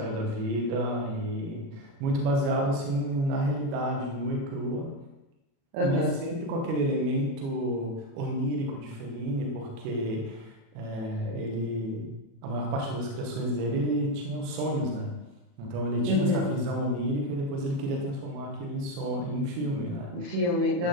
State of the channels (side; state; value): left; late; 36 ms